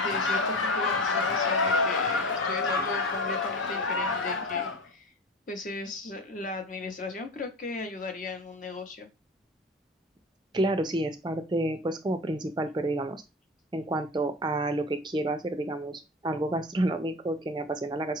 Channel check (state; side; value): normal; both; correlation 0.30